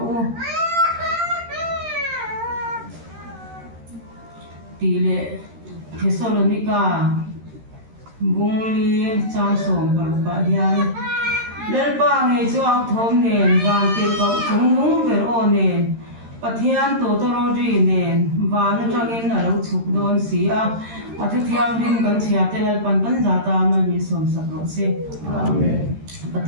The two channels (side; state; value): left; late; 13 ms